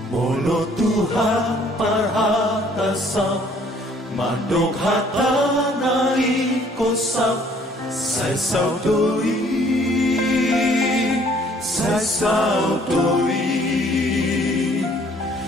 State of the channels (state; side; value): normal; both; correlation 0.59